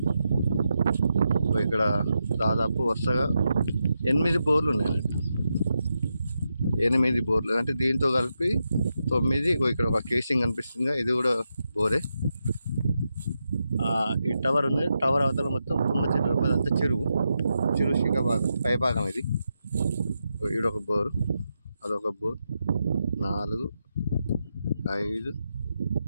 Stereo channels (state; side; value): inverted; both; correlation -0.86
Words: ఇక్కడ దాదాపు వరుసగా 8 బోర్లు ఉన్నాయన్నట్టు. 8 బోర్లు అంటే దీంతో కలిపి 9. ఇక్కడ ఒక కేసింగ్ కనిపిస్తుంది, ఇది కూడా బోరే. ఈ టవర్ ఉంది, టవర్ అవతల మొత్తం తుమ్మ చెట్లు, అదంతా చెరువు శిఖభాగం, పైభాగం ఇది. ఈడొక బోరు, అదొక బోర్. 4, 5,